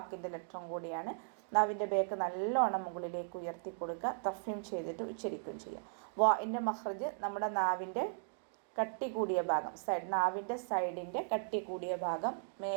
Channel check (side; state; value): left; silent; digital silence